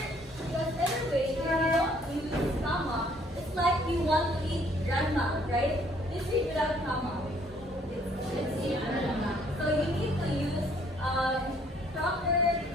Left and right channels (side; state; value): both; normal; correlation 0.62